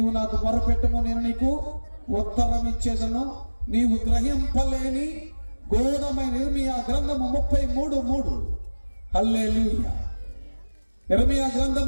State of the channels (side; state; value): both; inverted; correlation -1.00